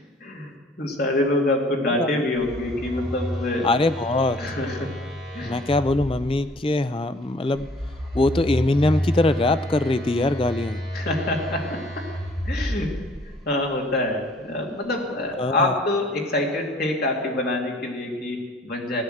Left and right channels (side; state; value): both; normal; correlation 0.56